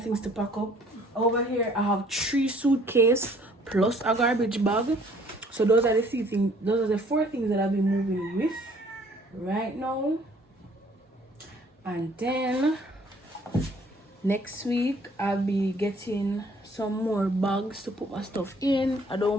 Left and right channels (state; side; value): normal; both; correlation 0.58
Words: things to pack up. Over here I have 3 suitcases plus a garbage bag. So those are the things. Those are the 4 things that I'll be moving with right now. And then next week I'll be getting some more bags to put my stuff in. I